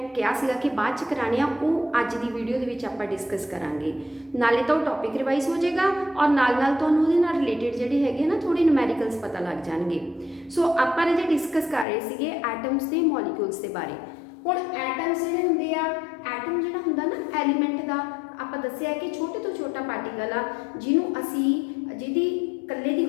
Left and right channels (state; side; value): drops out; right; at 11.9 s